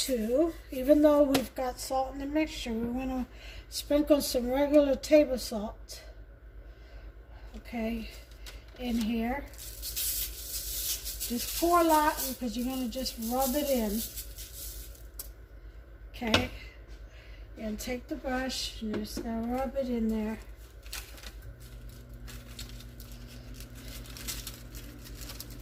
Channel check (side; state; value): both; identical; correlation 1.00